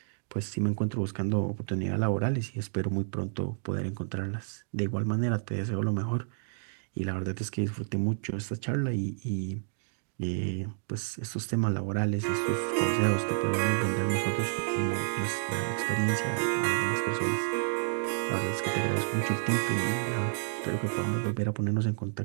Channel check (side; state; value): left; silent; digital silence